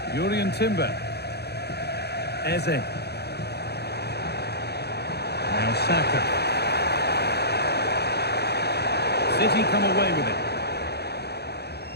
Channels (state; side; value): late; right; 0.48 ms